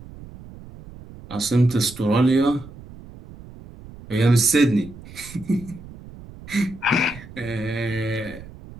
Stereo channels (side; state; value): right; noise; rumble, 17 dB below the sound